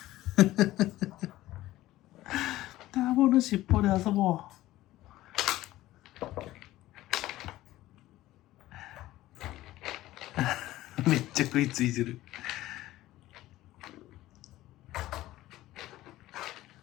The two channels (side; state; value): right; quieter; 16.0 dB